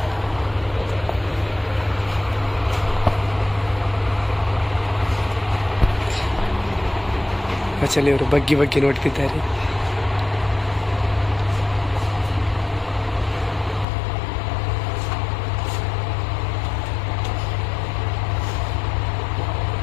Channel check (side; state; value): right; drops out; at 13.9 s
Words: ಮಚಲಿಯವರು ಬಗ್ಗಿ ಬಗ್ಗಿ ನೋಡ್ತಿದ್ದಾರೆ.